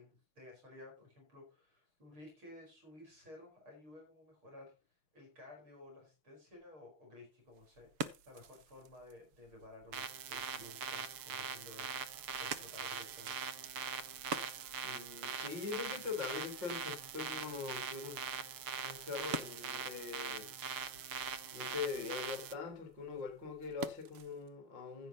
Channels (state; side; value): late; left; 6.7 ms